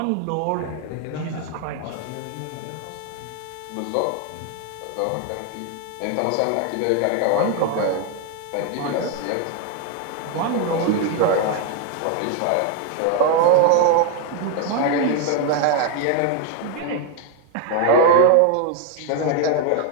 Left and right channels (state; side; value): different; both; correlation 0.01